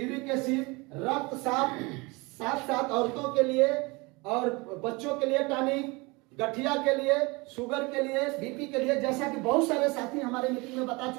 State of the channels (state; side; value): quieter; left; 25.7 dB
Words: एसिड, रक्तचाप, साथ साथ औरतों के लिए और बच्चों के लिए टॉनिक, गठिया के लिए, शुगर के लिए, बीपी के लिए, जैसा कि बहुत सारे साथी हमारे मीटिंग में बता